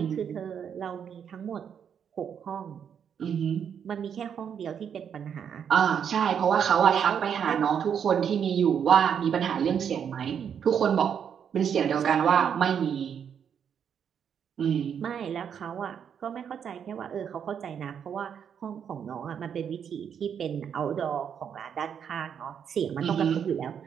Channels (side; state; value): left; quieter; 7.9 dB